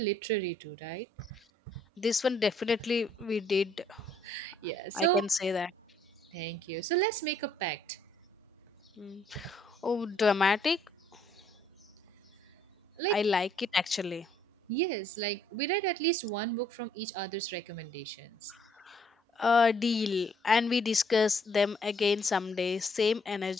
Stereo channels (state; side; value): normal; both; correlation 0.65